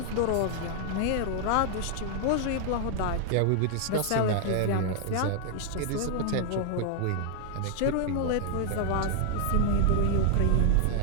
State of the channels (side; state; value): both; different; correlation 0.00